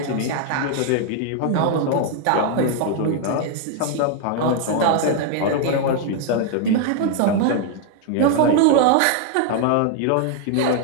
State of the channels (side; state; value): both; different; correlation 0.00